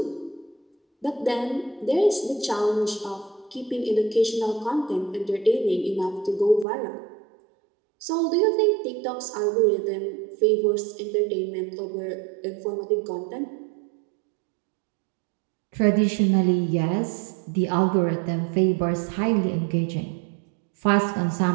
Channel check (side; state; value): left; drops out; at 6.7 s